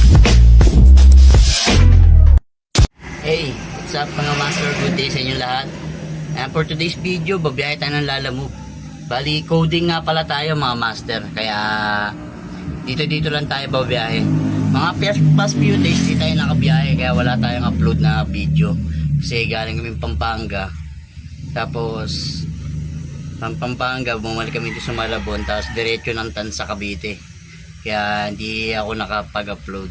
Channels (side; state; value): both; identical; correlation 1.00